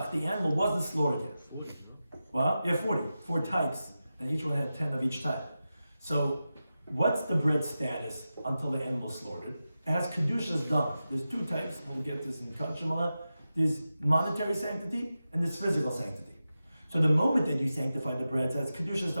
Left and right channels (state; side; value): inverted; both; correlation -0.92